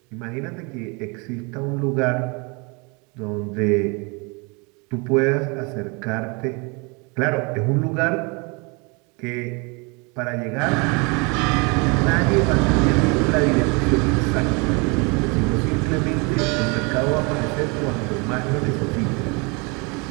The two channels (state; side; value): quieter; left; 30.5 dB